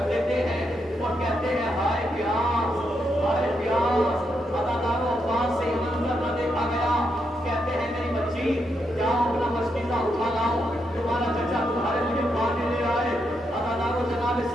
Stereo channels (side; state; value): both; normal; correlation 0.81